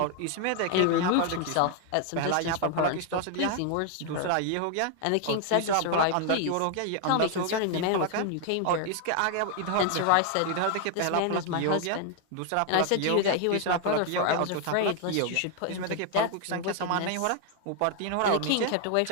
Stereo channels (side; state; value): both; different; correlation 0.00